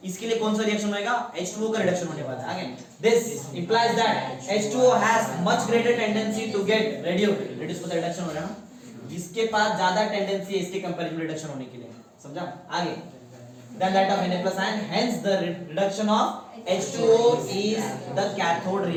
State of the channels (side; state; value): both; identical; correlation 1.00